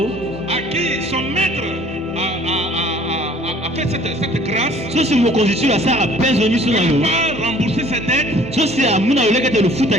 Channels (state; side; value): normal; both; correlation 0.53